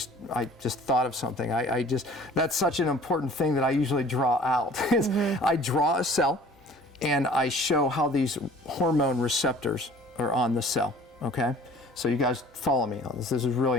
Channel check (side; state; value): both; normal; correlation 0.49